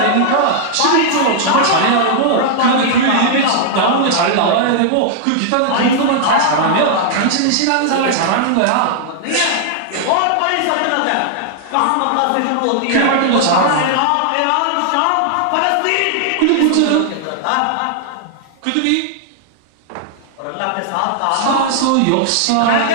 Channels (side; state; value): both; different; correlation -0.01